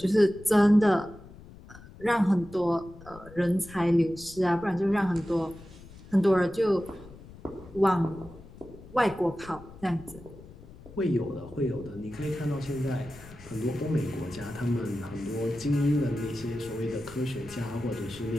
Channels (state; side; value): noise; left; rumble, 19 dB below the sound